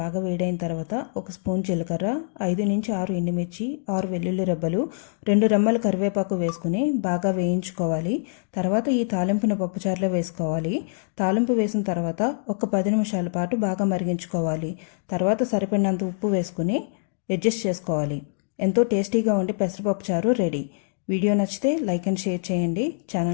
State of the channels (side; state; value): right; silent; digital silence